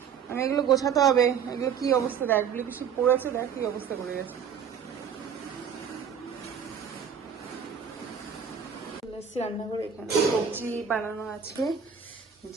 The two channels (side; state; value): left; quieter; 7.3 dB